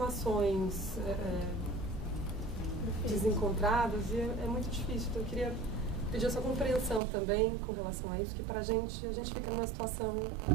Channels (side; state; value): left; drops out; at 7.0 s